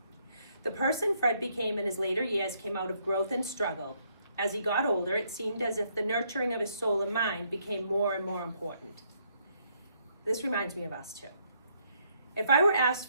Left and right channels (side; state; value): both; inverted; correlation -0.72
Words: The person Fred became in his later years came out of growth and struggle. As he got older, it seemed as if the nurturing of his soul and mind became more and more important. This reminds me of us too. If I were asked